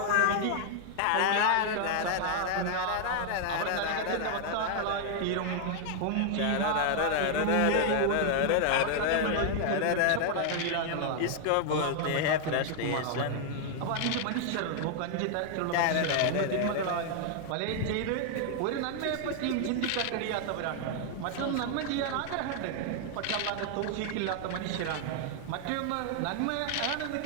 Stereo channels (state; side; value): different; both; correlation 0.00